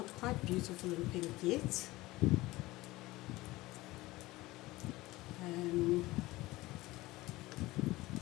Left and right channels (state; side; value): quieter; right; 19.3 dB